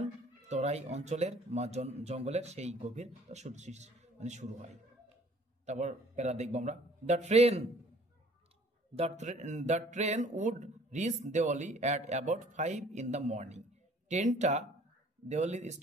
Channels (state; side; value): normal; both; correlation 0.54